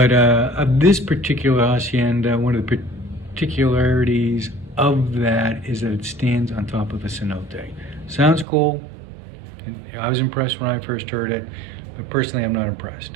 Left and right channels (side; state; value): left; drops out; at 8.5 s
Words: of this particular hacienda, one of the particularities of that is that it stands on top of a cenote. Sounds cool. I was impressed when I first heard it, but personally I'm not